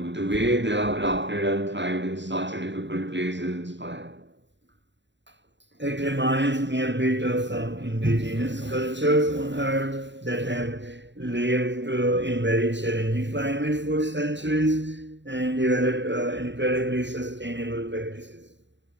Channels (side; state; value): left; late; 0.52 ms